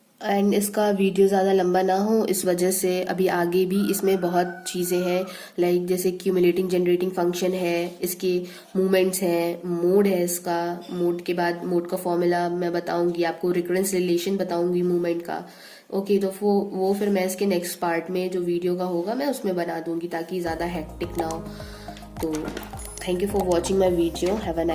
एंड इसका वीडियो ज़्यादा लंबा ना हो इस वजह से अभी आगे भी इसमें बहुत चीज़ें हैं, लाइक जैसे क्यूमुलेटिंग जनरेटिंग फंक्शन है, इसके मूवमेंट्स हैं, मोड है इसका, मोड के बाद मोड का फॉर्मूला मैं बताऊंगी आपको, रिकरेंस रिलेशन बताऊंगी मूवमेंट का। ओके, तो वो फिर मैं इसके नेक्स्ट पार्ट में जो वीडियो का होगा मैं उसमें बना दूंगी ताकि ज़्यादा हेक्टिक ना हो। तो thank you for watching my video, have a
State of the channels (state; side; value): identical; both; correlation 1.00